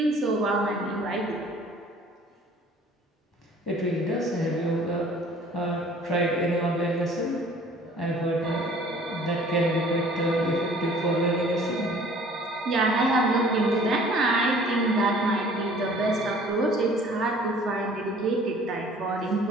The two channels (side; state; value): both; normal; correlation 0.52